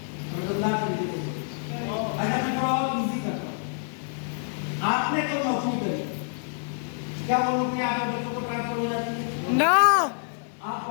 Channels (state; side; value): silent; right; 60 dB below the other